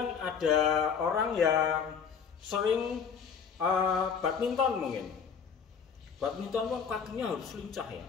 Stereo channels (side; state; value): right; quieter; 6.6 dB